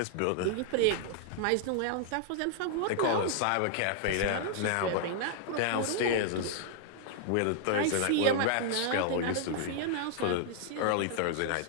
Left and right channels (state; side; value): different; both; correlation -0.01